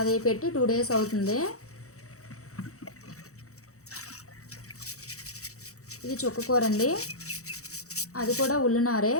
పెట్టి 2 days అవుతుంది. ఇది చుక్కకూర అండి, అది కూడా ఉల్లినారే.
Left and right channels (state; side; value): late; right; 0.65 ms